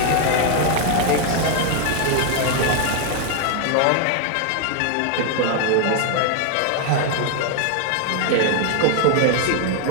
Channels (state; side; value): different; both; correlation 0.00